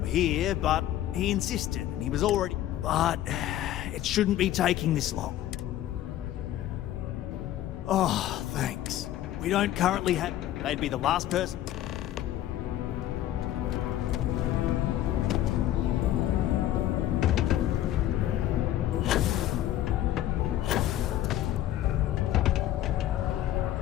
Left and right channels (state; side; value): quieter; right; 12.9 dB